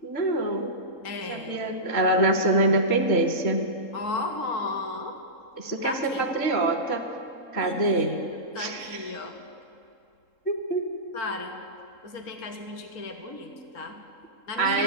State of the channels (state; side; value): late; right; 3.8 ms